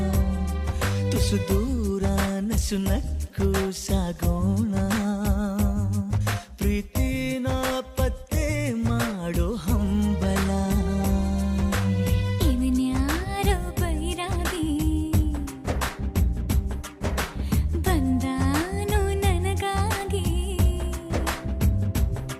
ತುಸು ದೂರ ನಸು ನಕ್ಕು ಸಾಗೋಣ, ಪ್ರೀತಿನ ಪತ್ತೆ ಮಾಡೋ ಹಂಬಲ. ಇವನ್ಯಾರೋ ಬೈರಾಗಿ ಬಂದಾನು ನನಗಾಗಿ,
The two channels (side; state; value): both; identical; correlation 1.00